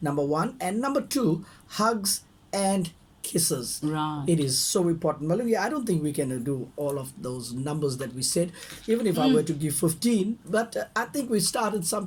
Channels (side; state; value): both; identical; correlation 1.00